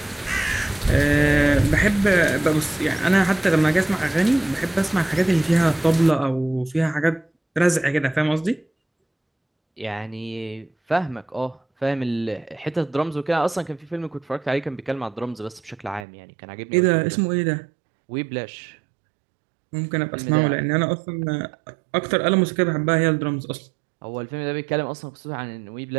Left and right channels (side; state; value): left; drops out; at 16.1 s